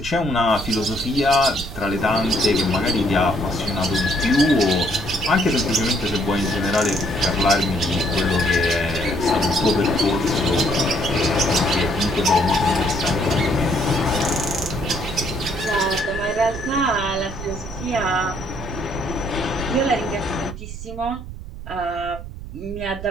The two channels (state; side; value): noise; right; rumble, 11 dB below the sound